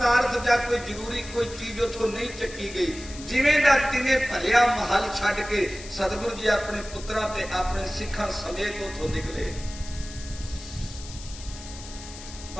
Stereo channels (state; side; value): noise; left; hiss, 14 dB below the sound